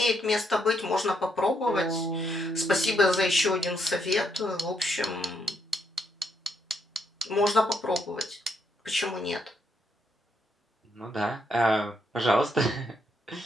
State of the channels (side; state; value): both; normal; correlation 0.76